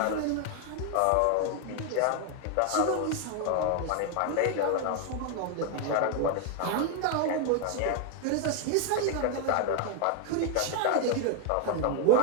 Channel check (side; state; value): both; different; correlation 0.00